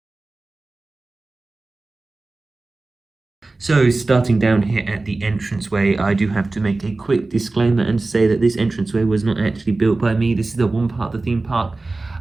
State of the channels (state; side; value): quieter; left; 3.3 dB